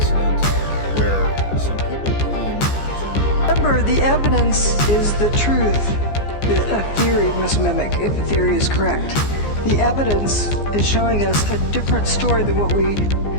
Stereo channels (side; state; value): right; late; 14 ms